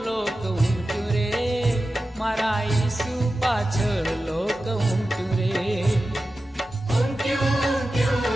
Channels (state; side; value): normal; both; correlation 0.93